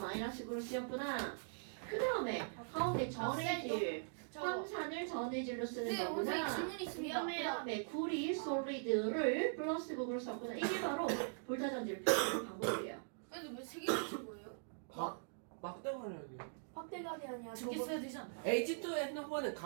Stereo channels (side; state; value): left; silent; digital silence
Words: 극으로 쓰였구나. 그 다음에 가운데 전해질 황산을 전해질로 쓰는 거구나. 질문이 있으면 그 다음에 구리 솔리드를 플러스 극으로 썼구나. 이게 바로 볼타 전지를 표현하는 방법이에요. 근데 왜세 개를 친 거예요? 막대가리요. 확대감이 아니야. 두개 써야 되지 않나? H2 핸드폰은